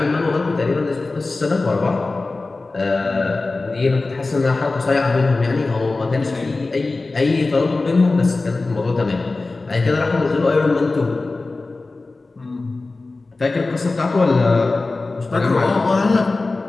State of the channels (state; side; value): quieter; right; 3.4 dB